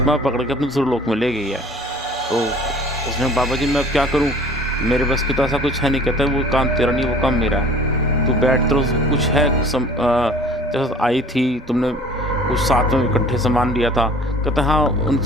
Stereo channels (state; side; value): normal; both; correlation 0.48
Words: पकड़ के अपने दूसरे लोक में ले गई है। तो उसने बाबा जी मैं अब क्या करूं, मेरे बस की तो ऐसा कुछ है नहीं। कहता है वो काम तेरा नहीं, वो काम मेरा है, तू बैठ, तो कुछ है जैसे आई थी तुमने कुछ साथ में इकट्ठे सामान लिया था। कहता हाँ